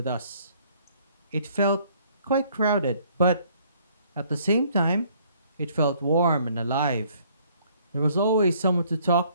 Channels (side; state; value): both; inverted; correlation -0.62